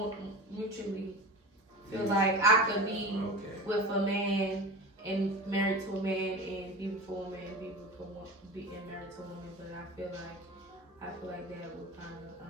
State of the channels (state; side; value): normal; both; correlation 0.31